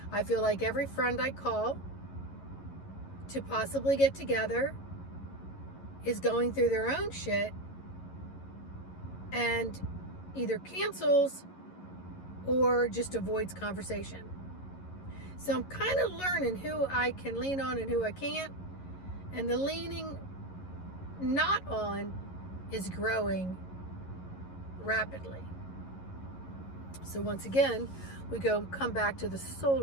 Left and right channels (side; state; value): right; late; 11 ms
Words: I feel like every friend I call to possibly get together is going through their own shit and either cancels or just avoids conversation. So I'm kind of learning who I can lean on and who I can't. And the leaning not on is growing rapidly. So once again, we come back to the